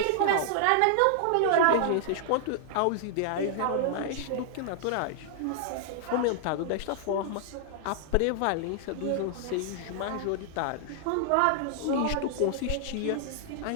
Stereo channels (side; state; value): both; different; correlation -0.01